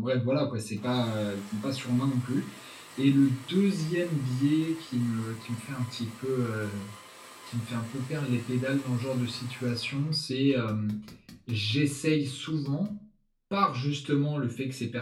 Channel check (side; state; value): both; identical; correlation 1.00